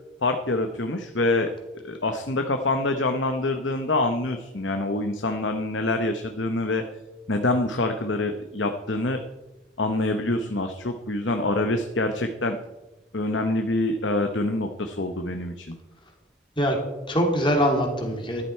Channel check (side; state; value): both; normal; correlation 0.30